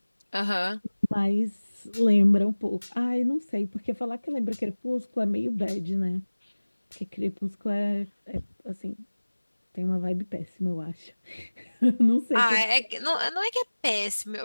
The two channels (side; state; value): both; inverted; correlation -1.00